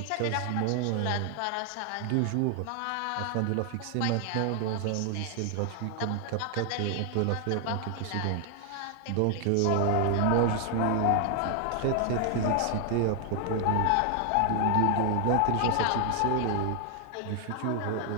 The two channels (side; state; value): both; different; correlation 0.00